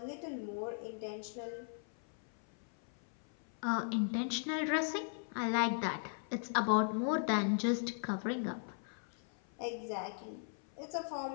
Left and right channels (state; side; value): silent; right; 52 dB below the other